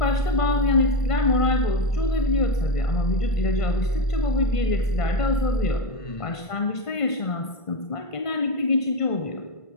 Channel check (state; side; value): late; right; 1.5 ms